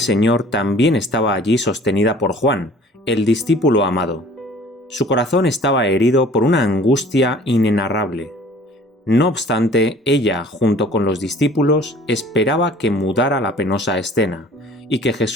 también estaba allí sostenida por Juan, el discípulo amado. Su corazón estaba herido por una angustia inenarrable. No obstante, ella, junto con los discípulos, esperaba que mudara la penosa escena, y que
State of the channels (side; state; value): both; normal; correlation 0.50